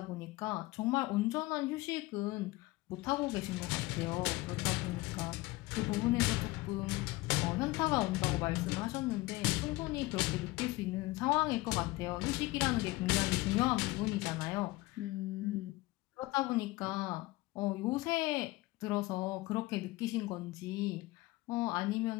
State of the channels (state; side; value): quieter; right; 20.3 dB